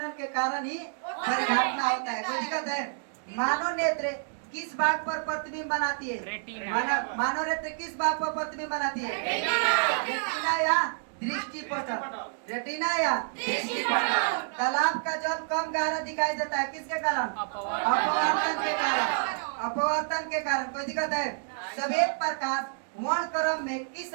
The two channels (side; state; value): left; silent; digital silence